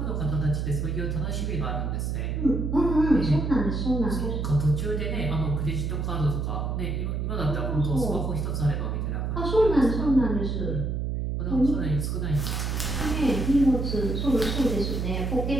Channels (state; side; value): noise; right; hum, 1 dB below the sound